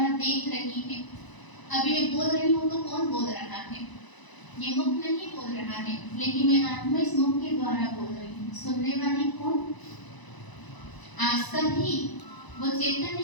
देख रही है। अभी मैं बोल रही हूँ तो कौन बोल रहा है? ये मुख नहीं बोल रहा है, लेकिन मैं आत्मा इस मुख के द्वारा बोल रही हूँ। सुनने वाली कौन? आज सभी वो चैतन्य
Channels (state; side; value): late; right; 1.0 ms